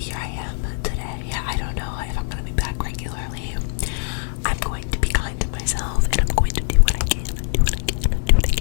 I am today. I don't know if I'm gonna be back regularly. I'm going to be kind to myself, and I'm going to do what I can.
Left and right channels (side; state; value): right; silent; 64 dB below the other